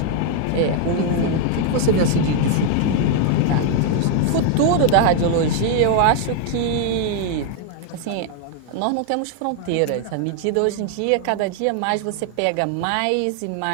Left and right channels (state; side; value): different; both; correlation 0.00